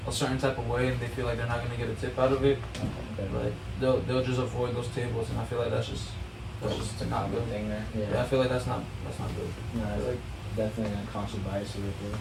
a certain type of way and they feel like they're not gonna get a tip out of it. Okay. Like they'll just avoid those tables and I feel like that's just It's a not common good. thing there. Yeah, I feel like that's not good. No, it's Like, definitely an unconscious bias right there.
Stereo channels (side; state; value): both; identical; correlation 1.00